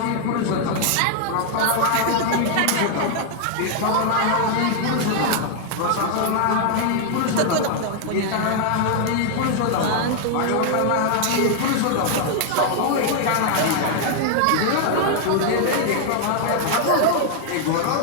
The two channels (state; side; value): different; both; correlation 0.00